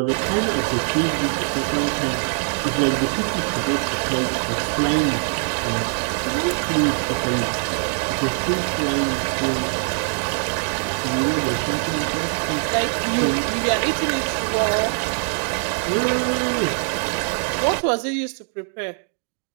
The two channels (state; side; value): silent; left; digital silence